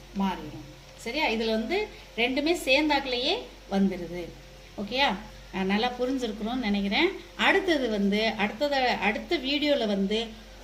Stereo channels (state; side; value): identical; both; correlation 1.00